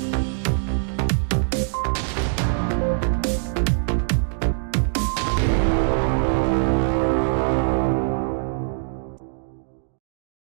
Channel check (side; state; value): left; silent; digital silence